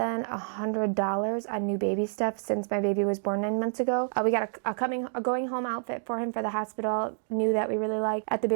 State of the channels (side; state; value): left; silent; digital silence